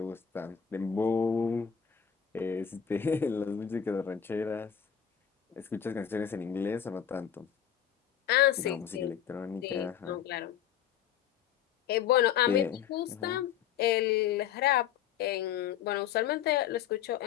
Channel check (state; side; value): quieter; right; 8.9 dB